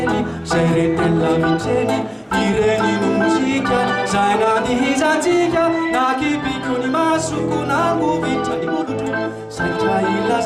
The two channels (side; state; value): both; identical; correlation 1.00